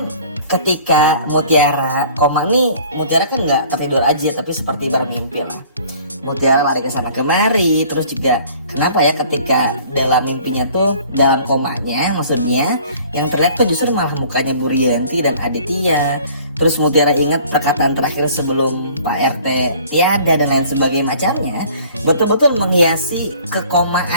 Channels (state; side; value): inverted; both; correlation -0.52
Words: ketika Mutiara koma nih, Mutiara kan nggak tertidur aja tapi seperti bermimpi lah. Mutiara lari ke sana kemari, terus juga kenapa ya ketika dalam mimpinya tuh, dalam komanya maksudnya, yang terlihat tuh justru malah mukanya Bu Rianti dan Aditya. Terus Mutiara ingat perkataan terakhir sebelum Pak RT tiada dan lain sebagainya macamnya, betul-betul menghiasi